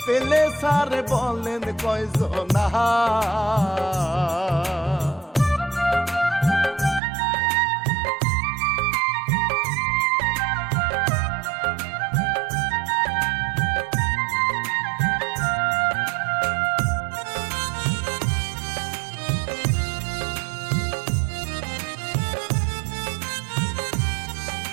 পেলে সারে বলেন কয়জনা।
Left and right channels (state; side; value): drops out; left; at 7.0 s